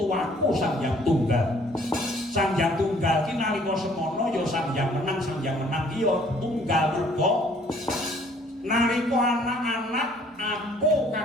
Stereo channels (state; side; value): normal; both; correlation 0.59